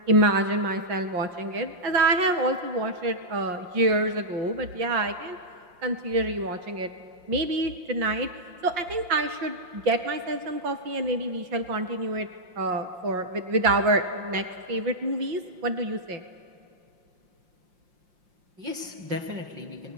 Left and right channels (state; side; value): late; left; 5.7 ms